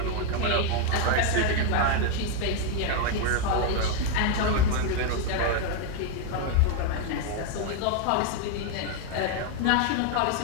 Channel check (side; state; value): both; different; correlation 0.01